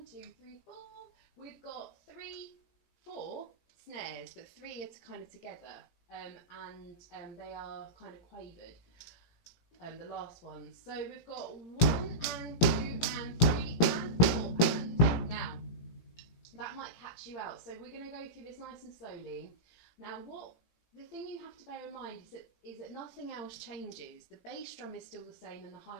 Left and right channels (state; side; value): late; right; 18 ms